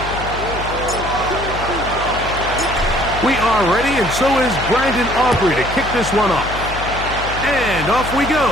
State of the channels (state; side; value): noise; left; hum, 9 dB below the sound